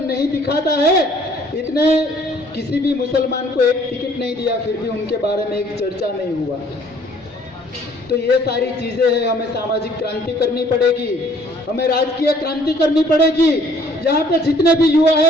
दिखाता है। इतने किसी भी मुसलमान को एक टिकट नहीं दिया, फिर भी उनके बारे में एक चर्चा नहीं हुआ। तो ये सारी चीजें हैं। हमें सामाजिक क्रांति करनी पड़ेगी, हमें राजकीय क्रांति करनी पड़ेगी। यहाँ पे जितने भी युवा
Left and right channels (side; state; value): both; normal; correlation 0.59